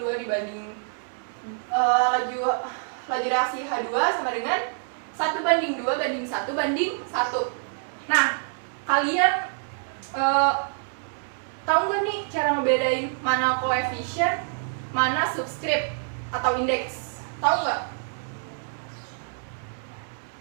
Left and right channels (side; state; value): left; silent; 61 dB below the other